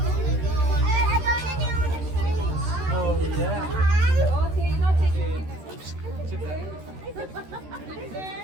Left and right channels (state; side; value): late; left; 13 ms